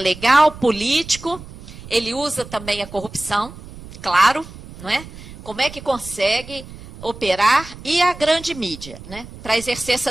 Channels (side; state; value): right; noise; rumble, 16 dB below the sound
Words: político, ele usa também a corrupção, claro, não é? Como é que consegue operar e a grande mídia, né, para exercer